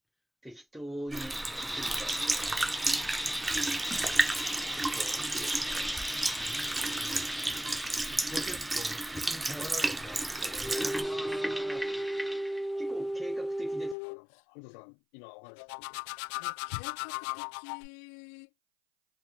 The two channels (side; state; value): right; drops out; at 14.0 s